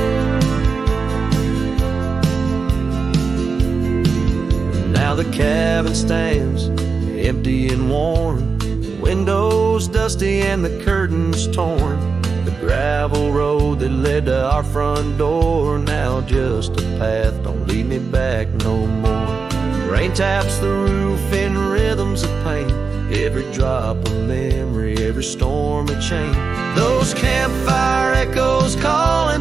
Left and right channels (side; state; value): left; quieter; 4.8 dB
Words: Now the cabin stands empty and worn, windows dusty and the curtains torn. The gravel road that led to our front door, now just a path, don't lead me back no more. Rain taps the roof in rhythms of pain, every drop of memory, every storm a chain. Those campfire echoes calling